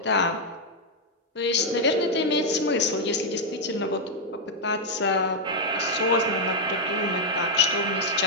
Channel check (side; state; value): both; normal; correlation -0.02